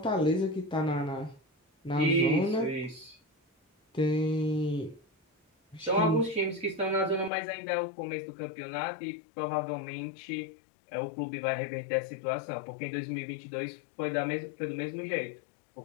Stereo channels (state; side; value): drops out; right; at 7.3 s